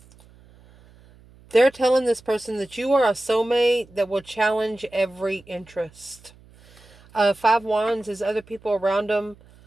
They're telling this person that you are a soulmate that will challenge every interest. 5 Wands is other people around them.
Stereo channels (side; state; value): right; noise; hum, 26 dB below the sound